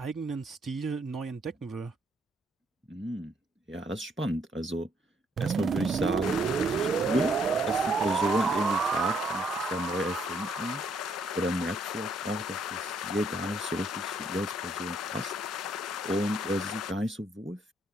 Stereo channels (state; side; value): normal; both; correlation 0.69